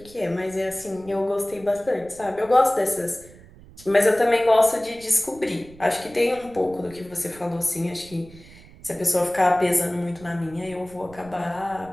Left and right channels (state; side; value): noise; right; rumble, 21 dB below the sound